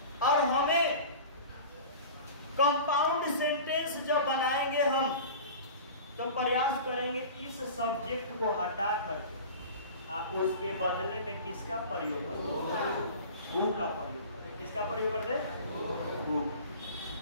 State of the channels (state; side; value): inverted; both; correlation -0.37